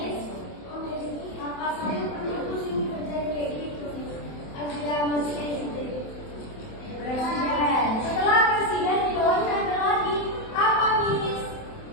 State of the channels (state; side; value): late; right; 27 ms